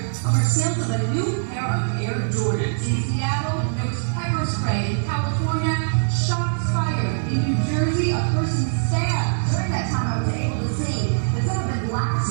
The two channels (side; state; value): left; silent; digital silence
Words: over sales of a new pair of Air Jordans. In Seattle, there was pepper spray. In California, shots fired. In New Jersey, a person stabbed. During that time, I was able to see that some of the glass